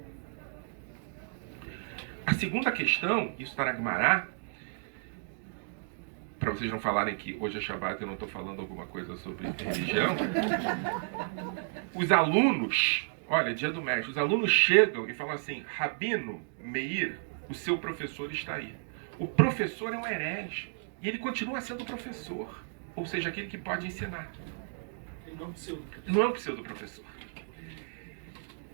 A segunda questão, isso está na Gemara, para vocês não falarem que hoje é Shabbat e eu não estou falando alguma coisa sobre religião. Os alunos, olha, dia do mestre, os alunos chegam e falam assim, Rabino Meir, o seu professor está aí. O professor é um herege e ele continua sendo professor, ou seja, aquele que pode ensinar. Não é um pseudo-professor.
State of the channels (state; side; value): silent; left; digital silence